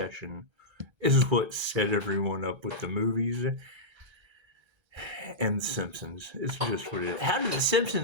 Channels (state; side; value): late; left; 1.3 ms